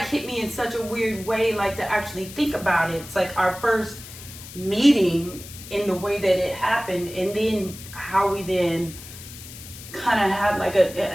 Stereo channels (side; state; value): left; noise; hiss, 15 dB below the sound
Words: hit me in such a weird way, like to actually think about it. It's like our first meeting in the way that it happened, and then how we then kind of had like